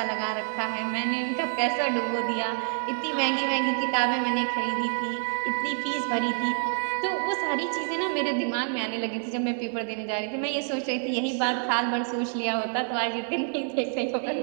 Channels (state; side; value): silent; left; 60 dB below the other